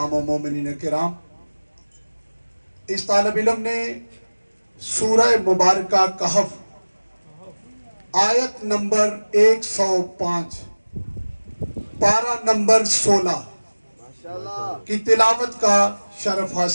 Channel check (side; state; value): both; inverted; correlation -1.00